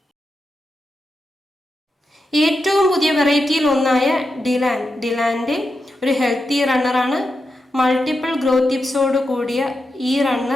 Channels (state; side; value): normal; both; correlation 0.88